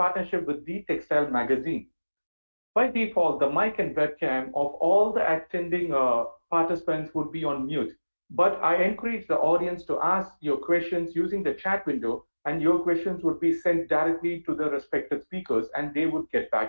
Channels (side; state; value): both; inverted; correlation -1.00